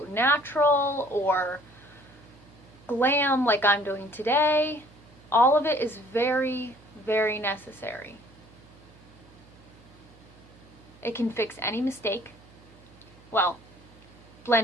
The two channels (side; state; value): right; noise; hum, 24 dB below the sound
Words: natural or glam like I'm doing today. All of it is very, very necessary. It can fix any mistake. Well,